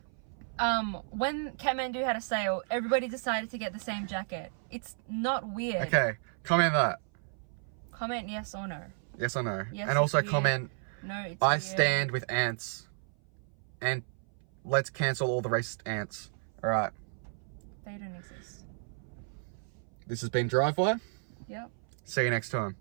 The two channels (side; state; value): left; silent; 56 dB below the other